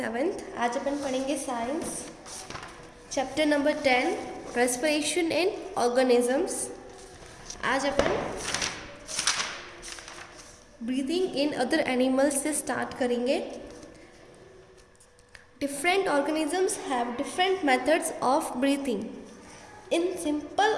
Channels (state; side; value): identical; both; correlation 1.00